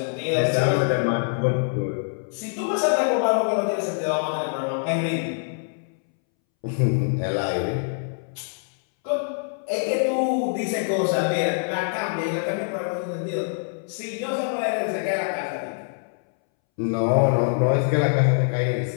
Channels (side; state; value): right; silent; 62 dB below the other